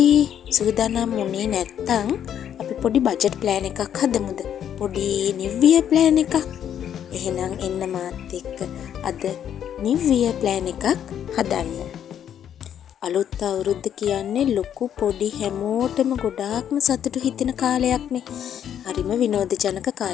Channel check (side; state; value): right; quieter; 9.5 dB